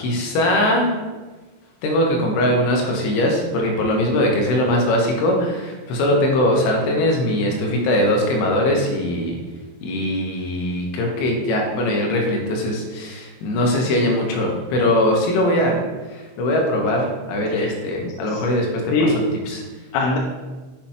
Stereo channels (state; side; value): late; right; 23 ms